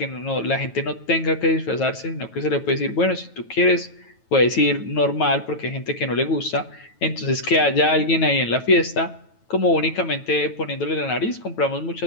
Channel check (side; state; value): right; late; 9.2 ms